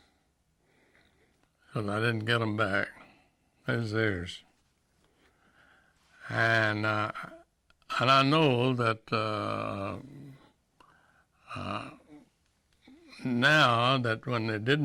because I didn't get them back. It's theirs. And I know that Now that when they did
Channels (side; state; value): both; identical; correlation 1.00